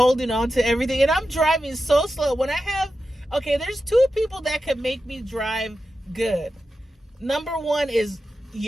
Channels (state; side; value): normal; both; correlation 0.91